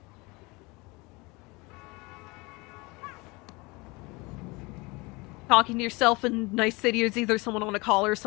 talking to yourself in Night City is either someone on a call or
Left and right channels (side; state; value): right; quieter; 25.3 dB